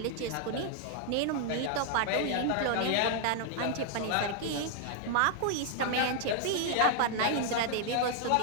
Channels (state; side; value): different; both; correlation 0.00